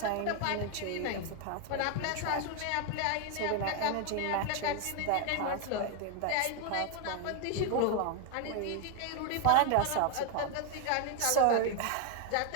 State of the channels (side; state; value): both; different; correlation 0.01